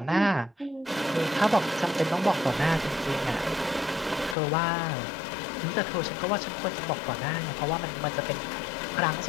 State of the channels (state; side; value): drops out; right; at 4.4 s